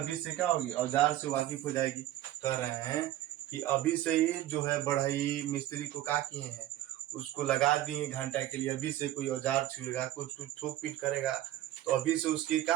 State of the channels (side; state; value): left; quieter; 13.7 dB